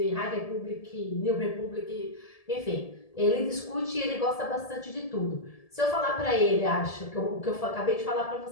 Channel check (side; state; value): right; late; 1.7 ms